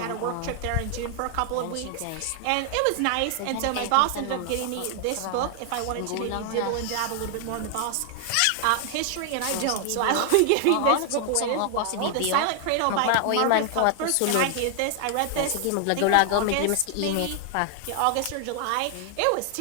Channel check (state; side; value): different; both; correlation 0.00